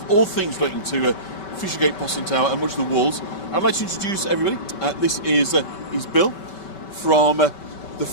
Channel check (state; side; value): late; right; 5.2 ms